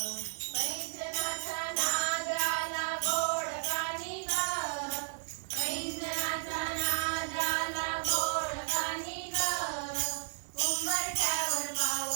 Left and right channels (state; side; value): silent; left; digital silence